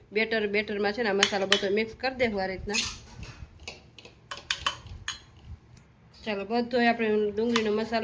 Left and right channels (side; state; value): both; identical; correlation 1.00